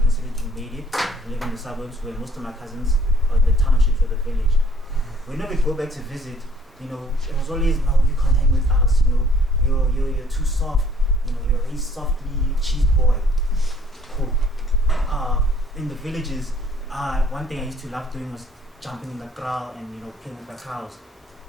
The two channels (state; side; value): normal; both; correlation 0.59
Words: to made it, live in the suburbs where most of my cousins are in the townships or the village. Whenever we go back to visit, it was always, no, you can't hang with us, you're too soft, you're a softly cheese boy. Cool. In the villages, one thing I used to love doing was jumping in the kraal and playing with the cows.